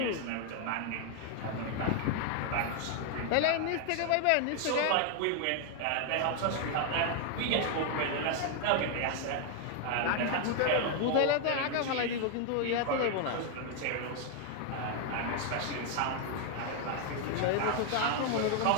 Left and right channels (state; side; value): different; both; correlation 0.00